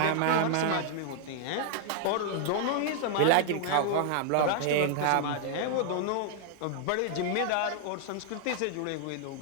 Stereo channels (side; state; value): both; different; correlation 0.00